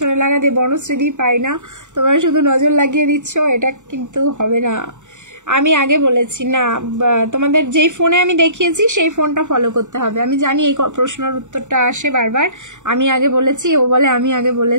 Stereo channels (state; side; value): late; left; 0.85 ms